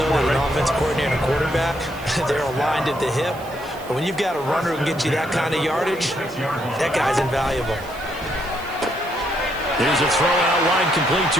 that an offense coordinator and a quarterback, they're aligned at the hip. But when you've got a runner who can get you that kind of yardage, that guy's invaluable. Here's a throw out line complete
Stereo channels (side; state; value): right; noise; hiss, 21 dB below the sound